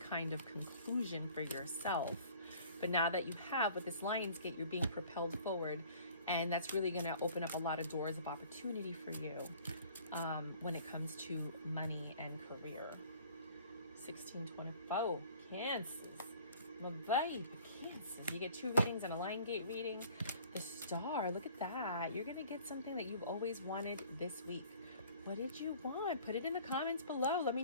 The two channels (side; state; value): both; inverted; correlation -0.51